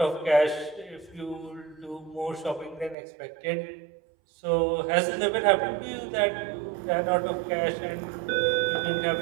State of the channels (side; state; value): left; drops out; at 3.0 s